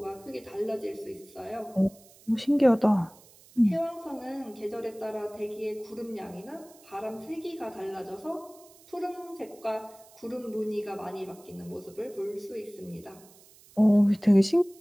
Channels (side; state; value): right; noise; hiss, 25 dB below the sound